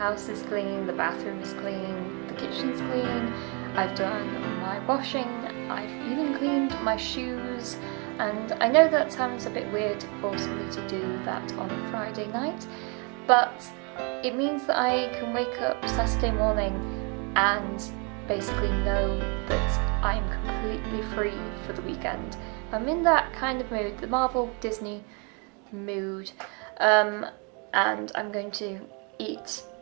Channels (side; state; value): left; quieter; 34.2 dB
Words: is clean, the bathroom is clean, the kitchen's clean, I've done my washing, I've even cleaned my shoes, and I know that sounds a bit weird to force me to do that on a Friday night, but it means that I can wake up Saturday morning and basically know that I'm completely free for the weekend. I'm in that kind of mood, the Marvel Disney mood, and I'm going to eat